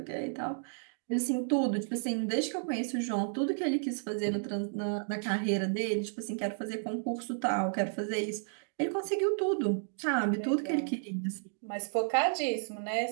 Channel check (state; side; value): silent; left; digital silence